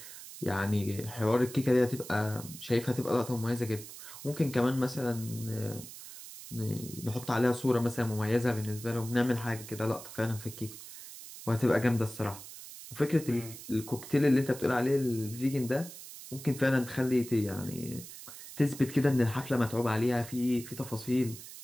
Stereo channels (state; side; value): noise; right; hiss, 14 dB below the sound